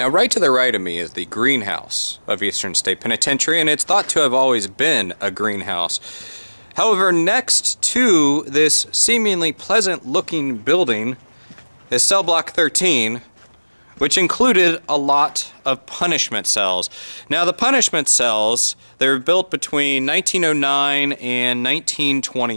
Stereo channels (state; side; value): inverted; both; correlation -1.00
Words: right to the right of me is the greenhouse of Eastern State Penitentiary, and it's thought to have always been a greenhouse. However, next to this seemingly pleasant-looking building is Cellblock 13, which included a lot of punishment cells. Now, the punishment cells, they were built between 1909 and